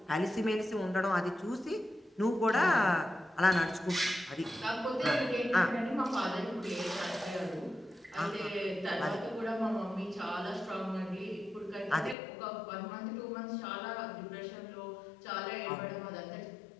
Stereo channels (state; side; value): drops out; right; at 12.2 s